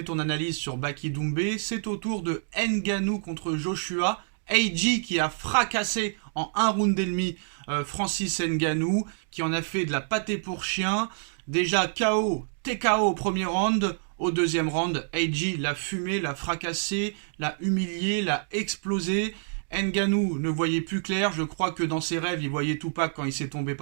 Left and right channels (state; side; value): silent; left; digital silence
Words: ton analyse sur Baki Doumbé. C'est au tour de Ngannou contre Joshua. AJ qui a fracassé en un round et demi Francis Ngannou, qui en a fait de la pâtée pour chien. Déjà KO, TKO au premier round. Au deuxième round, AJ l'a fumé, l'a fracassé, l'a humilié, l'a explosé. Ngannou ne voyait plus clair. Je crois que dans ses rêves, il voyait Tupac quand il s'est tombé